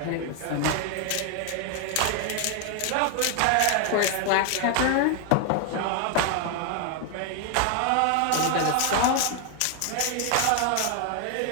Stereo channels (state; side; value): different; both; correlation 0.00